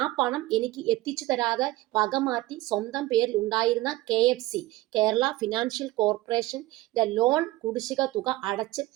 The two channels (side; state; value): left; quieter; 18.4 dB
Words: പണം എനിക്ക് എത്തിച്ചു തരാതെ വകമാറ്റി സ്വന്തം പേരിൽ ഉണ്ടായിരുന്ന KFC, കേരള ഫിനാൻഷ്യൽ കോർപ്പറേഷന്റെ ലോൺ കുടിശ്ശിക തുക അടച്ച്